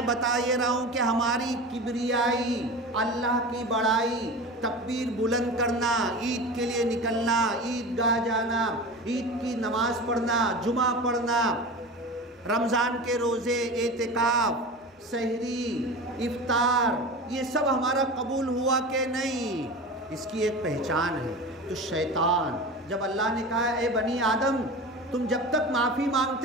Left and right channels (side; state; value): both; normal; correlation 0.31